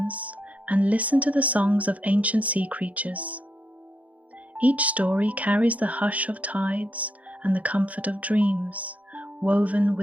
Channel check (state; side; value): late; left; 0.070 ms